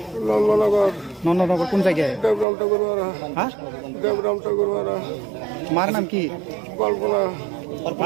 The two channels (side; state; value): left; drops out; at 2.5 s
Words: नंदनगर, नंदनगर कौन जगह है? देवराम ठाकुरवाड़ा, हाँ, देवराम ठाकुरवाड़ा। मार नाम की कल्पना,